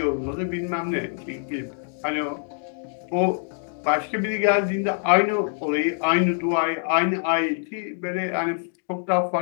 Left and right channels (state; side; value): silent; right; digital silence